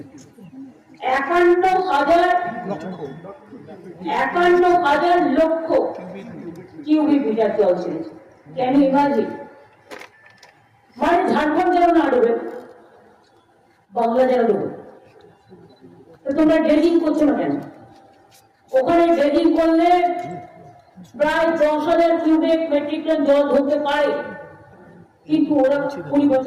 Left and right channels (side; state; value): both; identical; correlation 1.00